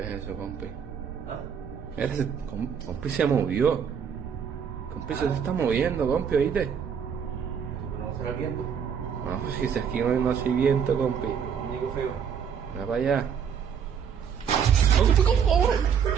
es eso, compi? ¿Ah? Mira, compi se movió. Compi se está moviendo, compi, ¿oíste? Eso no será el viento. No, si aquí no hay viento, compi. Muñeco feo. Mira para allá.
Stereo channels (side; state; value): left; quieter; 7.4 dB